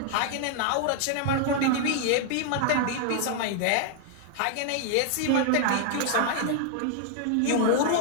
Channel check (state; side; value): different; both; correlation 0.00